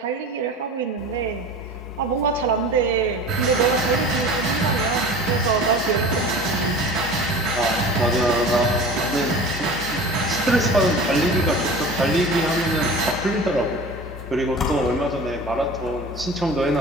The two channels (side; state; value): both; normal; correlation 0.38